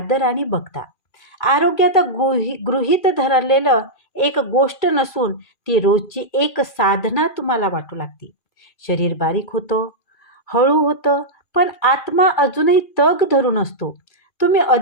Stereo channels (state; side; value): late; right; 2.4 ms